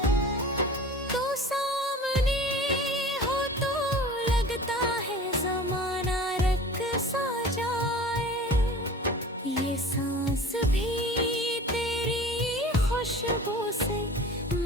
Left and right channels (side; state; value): both; normal; correlation 0.40